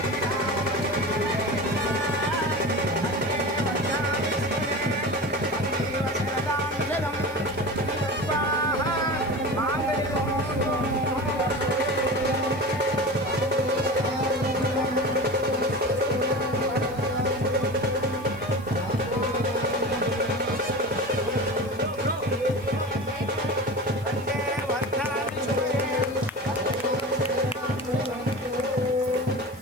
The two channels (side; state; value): left; noise; hiss, 24 dB below the sound